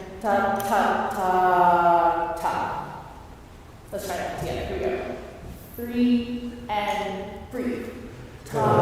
ta ta ta ta. Let's try that together. Here we go. 3 and breathe. Ta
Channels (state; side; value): identical; both; correlation 1.00